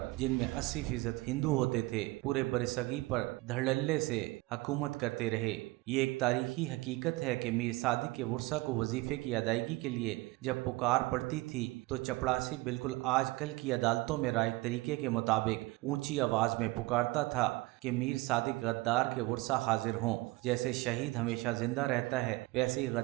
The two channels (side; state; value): left; quieter; 21.7 dB